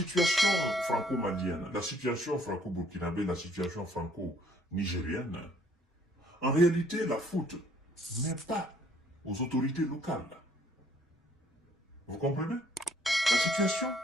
franco-malienne, la situation franco-burkinabé, la situation franco-nigérienne, en réalité, la faute n'est pas aux autorités locales. Vous comprenez? La situation,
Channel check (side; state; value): both; normal; correlation 0.62